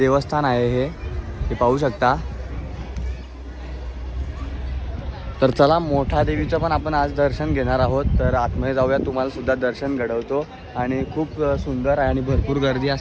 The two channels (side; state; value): both; identical; correlation 1.00